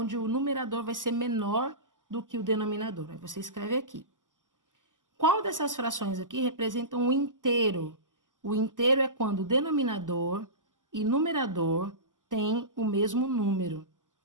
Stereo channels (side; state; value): left; late; 0.88 ms